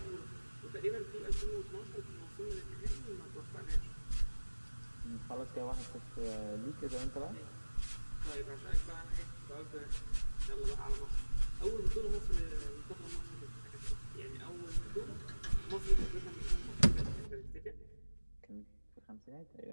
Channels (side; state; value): both; inverted; correlation -1.00